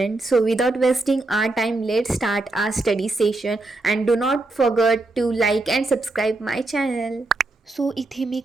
so without wasting our time, let's start our study session and do not forget to like and subscribe my channel. So इथे मी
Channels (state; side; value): quieter; left; 3.1 dB